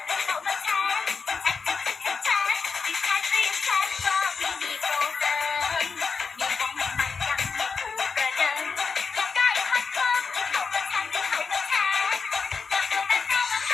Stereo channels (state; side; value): quieter; right; 5.2 dB